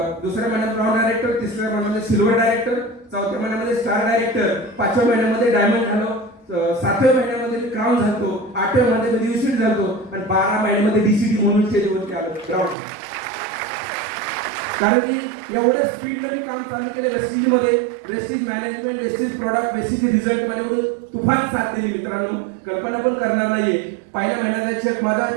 दुसऱ्या महिन्यात ब्राउन डायरेक्टर, तिसऱ्या महिन्यामध्ये सिल्वर डायरेक्टर, चौथ्या महिन्यामध्ये स्टार डायरेक्टर, 5व्या महिन्यामध्ये डायमंड झालो, 7व्या महिन्यामध्ये मी क्राऊन झालो, 8व्या महिन्यामध्ये युसिट झालो आणि 12 महिन्यामध्ये डीसीडी म्हणून स्टेजवरती आलो ग्राउंड. कारण की एवढ्या स्पीडने मी काम चालू केले. वेस्टेजमध्ये wastage management, wastage product, wastage result मध्ये म्हणून तुफान साथ दिली मित्रांनो. कल्पना पण करणार नाहीये. पहिल्या महिन्याचा चेक माझा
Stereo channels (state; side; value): drops out; left; at 12.8 s